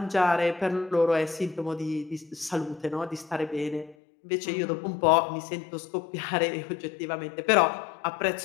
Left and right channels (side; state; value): right; drops out; at 4.0 s